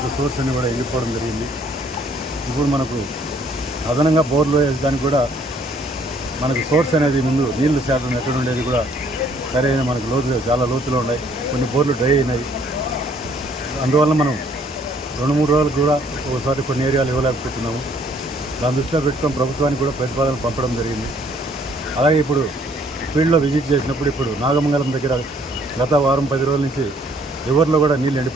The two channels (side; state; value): both; normal; correlation 0.63